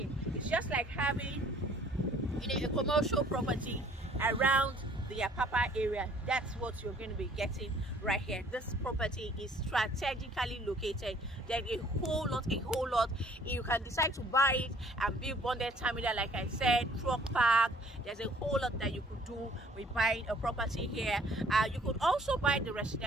it's just like having, you know, a commercial property around the Apapa area. That's what you're going to be getting right here. This property is strategically located. Then a whole lot, you can decide to buy it and build bonded terminal, like I said, truck park. There's a whole lot that you could do with buying a property here. You could also buy the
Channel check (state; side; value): normal; both; correlation 0.57